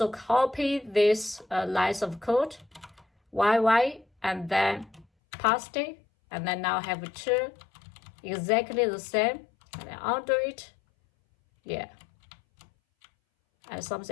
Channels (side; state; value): right; drops out; at 5.1 s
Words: copy this lines of code, YY, and then paste it, and then now have two exactly the same, and then undo it, yeah. And